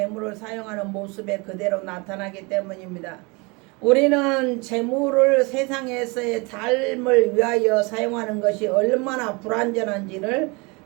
사용하는 모습에 그대로 나타나기 때문입니다. 우리는 재물을 세상에서의 삶을 위하여 사용하는 것이 얼마나 불완전한지를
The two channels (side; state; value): left; quieter; 28.0 dB